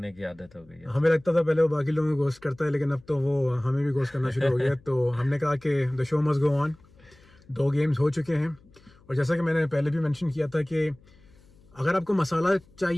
की आदत हो गई है. हमें लगता था पहले वो बाकी लोगों को गोस्ट करता है, लेकिन अब तो वो हमें भी गोस्ट करना शुरू हो गया. तो हमने कहा कि the show must go on. 2 games हो चुके हैं और जैसा कि मैंने पहले भी मेंशन किया था कि अगर आपको मसाला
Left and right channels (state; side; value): noise; left; hum, 28 dB below the sound